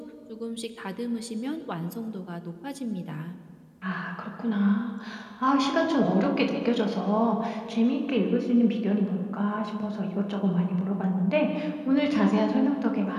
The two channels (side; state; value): both; identical; correlation 1.00